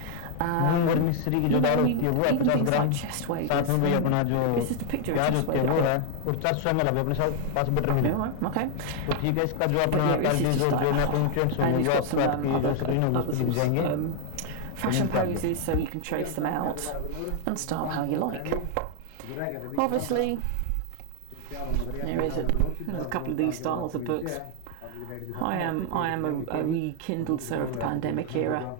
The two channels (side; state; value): both; different; correlation 0.00